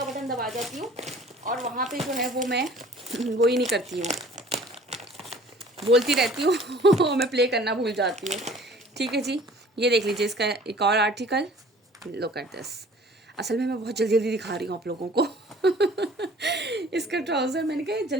बटन दबा जाती हूँ, और वहाँ पे जो है वो मैं वो ही नहीं करती हूँ, बोलती रहती हूँ मैं प्ले करना भूल जाती हूँ। ठीक है जी, ये देख लीजिए इसका एक और आर्टिकल, लुक एट दिस। असल में मैं बहुत जल्दी जल्दी दिखा रही हूँ आप लोगों को इसका ट्राउज़र, मैंने कहा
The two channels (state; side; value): normal; both; correlation 0.50